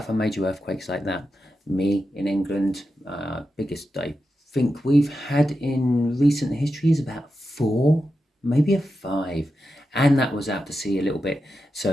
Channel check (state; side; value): normal; both; correlation 0.89